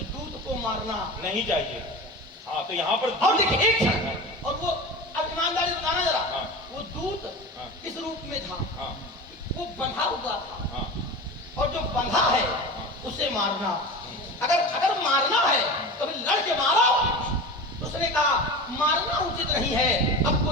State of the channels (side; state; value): both; normal; correlation 0.30